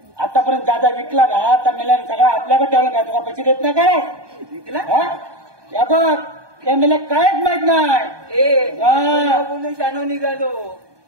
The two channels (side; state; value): left; late; 1.2 ms